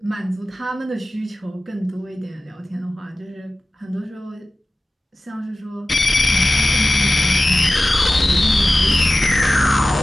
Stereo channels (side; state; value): both; normal; correlation 0.96